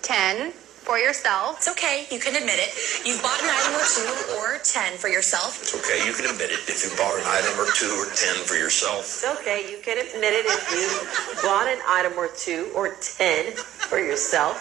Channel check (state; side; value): quieter; left; 12.9 dB